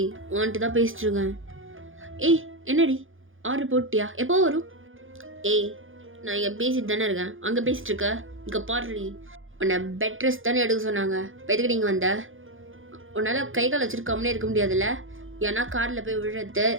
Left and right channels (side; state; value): left; late; 0.58 ms